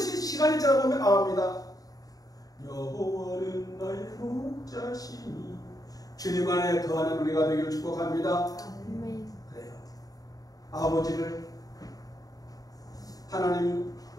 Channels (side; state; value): right; late; 0.18 ms